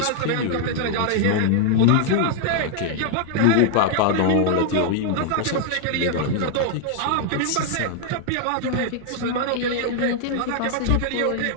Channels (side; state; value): both; different; correlation 0.00